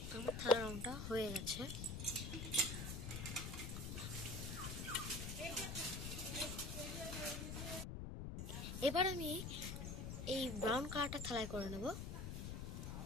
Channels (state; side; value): noise; left; rumble, 5 dB below the sound